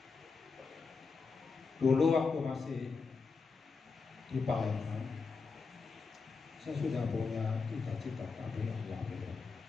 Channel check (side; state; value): right; quieter; 4.8 dB